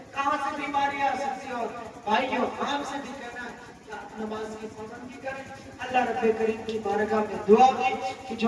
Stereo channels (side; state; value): both; identical; correlation 1.00